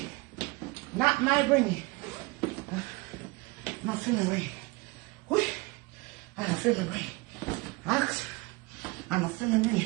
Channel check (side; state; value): left; quieter; 25.1 dB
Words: Not my bring it. I'm not feel me bring it. Whee. I'm not feel me bring it. Ask. I'm not feel me bring